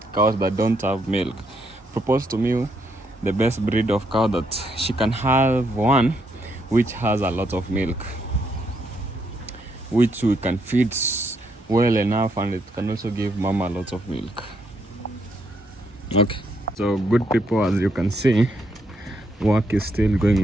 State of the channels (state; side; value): normal; both; correlation 0.75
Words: cows that don't have milk, propose to me the best breed of cow that she can have one which has a lot of milk, which we can feed well enough, and it can also give mama a lot of milk. Okay, so good people, as you can see, work is still